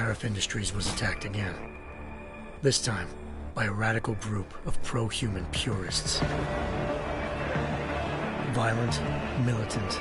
Industries was attacked again. This time, by a radical group of pro-human purists. Violent, militant,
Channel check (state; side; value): identical; both; correlation 1.00